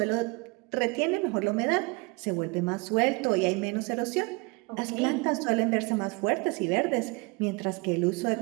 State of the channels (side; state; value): left; quieter; 27.7 dB